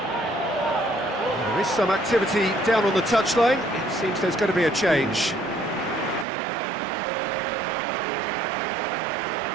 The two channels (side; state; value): left; drops out; at 6.2 s